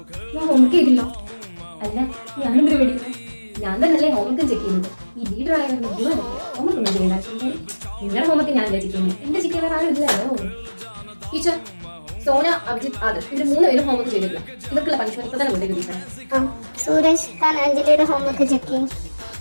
ഞാൻ ഹോംവർക്ക് ചെയ്തില്ല. അല്ല, ഞാനെന്തിനു പേടിക്കുന്നത്? ഞാൻ തന്നെയല്ലേ ഹോംവർക്ക് ചെക്ക് ചെയ്യുന്നത്. ഈ ലീഡറായ ഹോംവർക്ക് ഒന്നും ചെയ്യണ്ട. നിങ്ങളുടെ ഹോംവർക്ക് ഞാൻ ചെക്ക് ചെയ്യുന്നത്. എന്റെ ചെക്ക് ചെയ്യാൻ ആരും ഇല്ലല്ലോ. ടീച്ചർ, സോന, അഭിജിത്ത്, ആദർശ് ഇവര് 3 പേരും ഹോംവർക്ക് ചെയ്തിട്ടില്ല. ഇവർക്കുള്ള പണിഷ്മെന്റ് ഇപ്പൊ തന്നെ കൊണ്ടേക്ക് ടീച്ചർ. സൂരജ്, താൻ അഞ്ജലിയുടെ ഹോംവർക്ക് ചെക്ക് ചെയ്യും.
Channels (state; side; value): inverted; both; correlation -1.00